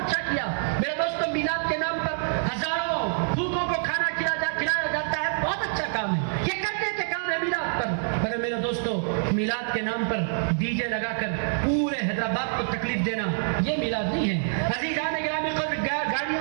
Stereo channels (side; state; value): left; silent; digital silence